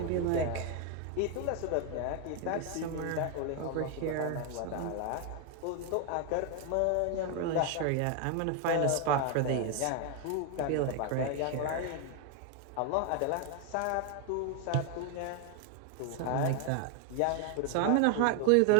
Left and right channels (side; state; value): both; different; correlation 0.01